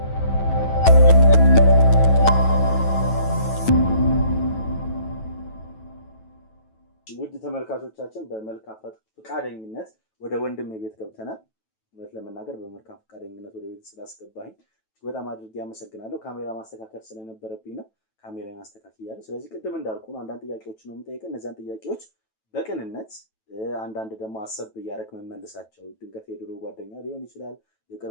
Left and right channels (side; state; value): right; late; 9.2 ms